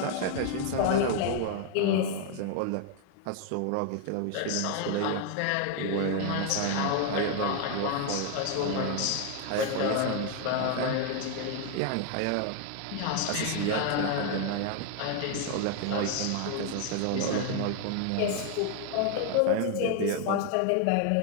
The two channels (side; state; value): both; different; correlation 0.01